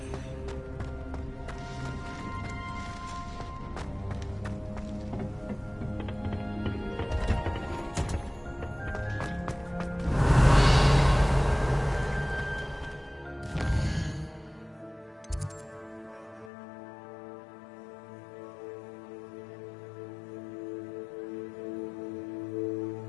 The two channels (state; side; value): drops out; right; at 16.5 s